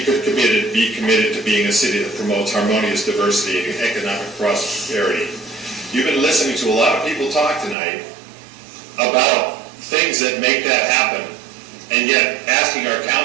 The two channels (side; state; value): left; drops out; at 7.8 s